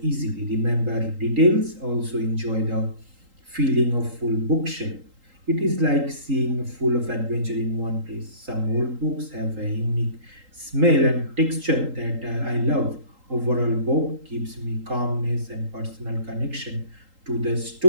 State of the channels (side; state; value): left; late; 3.8 ms